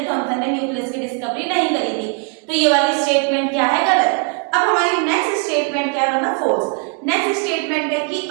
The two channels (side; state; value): left; quieter; 37.4 dB